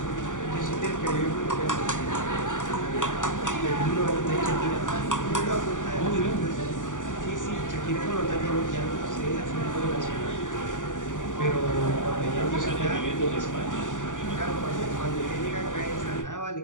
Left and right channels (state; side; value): late; right; 0.87 ms